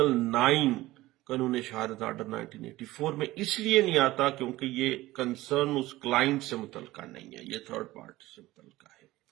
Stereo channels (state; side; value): quieter; left; 17.5 dB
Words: 9 قانون شہادت آرڈر 1984 میں اس لیے نہیں آتا کیونکہ یہ کنسرن اس کلائنٹ سے متعلقہ نہیں ہے، یہ تھرڈ پارٹی سے متعلقہ ہے۔